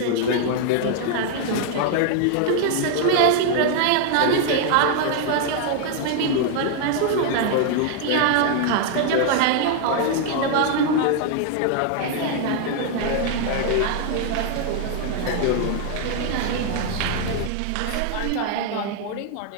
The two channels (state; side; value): different; both; correlation 0.00